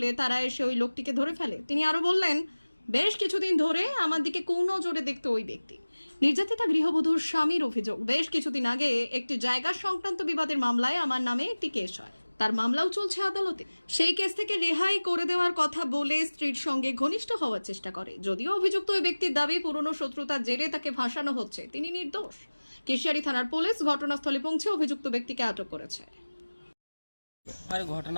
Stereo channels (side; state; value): both; inverted; correlation -1.00